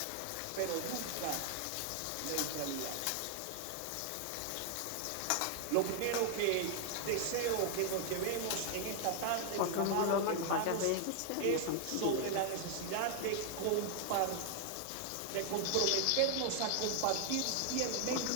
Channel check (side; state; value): both; different; correlation 0.00